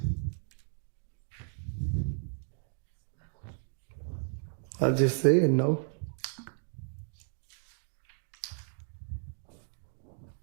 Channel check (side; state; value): left; silent; 55 dB below the other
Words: I just said no.